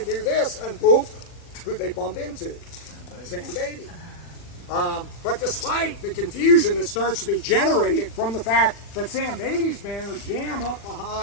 do this, and boom, who they bump into? Sam Beatty. But despite the confusion that starts to be generated from the fact that Sam Beatty's men are jammed up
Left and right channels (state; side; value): late; right; 40 ms